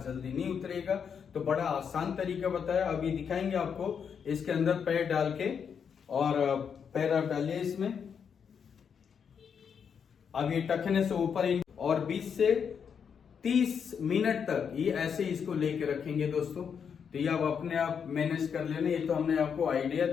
जल्दी नहीं उतरेगा। तो बड़ा आसान तरीका बताया, अभी दिखाएंगे आपको। इसके अंदर पैर डाल के, और पैर आप डालिए इसमें। अब ये टखने से ऊपर और 20 से 30 मिनट तक ये ऐसे इसको लेके रखेंगे दोस्तों। तो ये आप अपने आप मैनेज कर लेना। ये तो हमने आपको आइडिया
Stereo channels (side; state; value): right; quieter; 7.0 dB